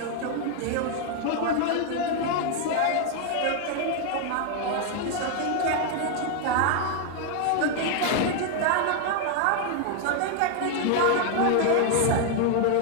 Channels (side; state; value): both; different; correlation 0.00